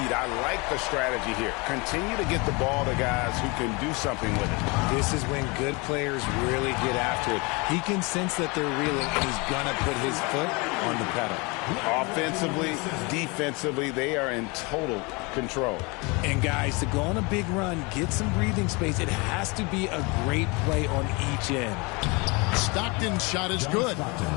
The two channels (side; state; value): right; quieter; 27.9 dB